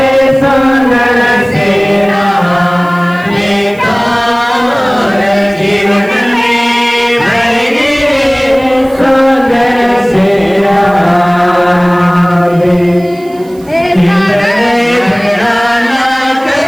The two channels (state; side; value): noise; right; hiss, 26 dB below the sound